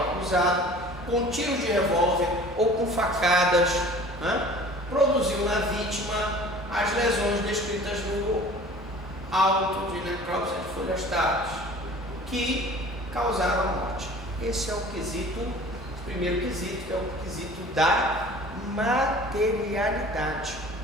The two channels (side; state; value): both; normal; correlation 0.45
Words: acusado, com tiros de revólver ou com facadas, produziu na vítima as lesões descritas no auto de necrópsia de folhas táteis, que causaram a morte. Esse é o quesito, o primeiro quesito, que é o quesito da materialidade.